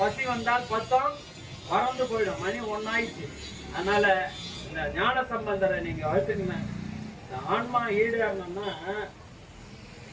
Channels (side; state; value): both; identical; correlation 1.00